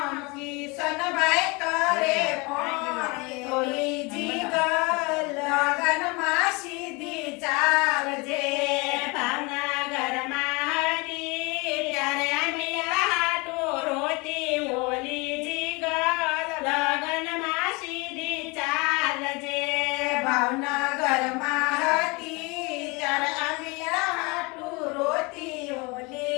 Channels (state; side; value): quieter; right; 27.4 dB